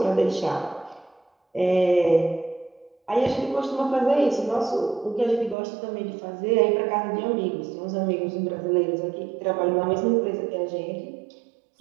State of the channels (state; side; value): drops out; left; at 5.6 s